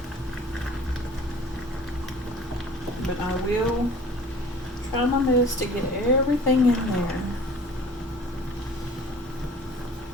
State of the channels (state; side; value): normal; both; correlation 0.47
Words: But I will try my best to get everything in there.